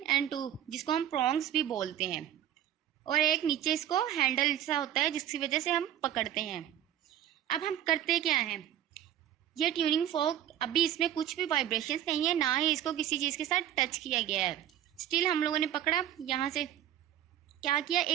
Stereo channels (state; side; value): quieter; left; 11.1 dB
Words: और 2, जिसको हम प्रॉन्ग्स भी बोलते हैं, और एक नीचे इसको हैंडल सा होता है जिसकी वजह से हम पकड़ते हैं. अब हम करते क्या हैं? ये ट्यूनिंग फोक, अभी इसमें कुछ भी वाइब्रेशंस नहीं है, ना ही इसको किसी चीज़ के साथ टच किया गया है. स्टिल हम लोगों ने पकड़ा, यहाँ से क्या किया,